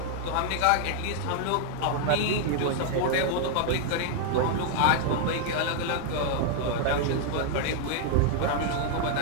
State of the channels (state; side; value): different; both; correlation 0.00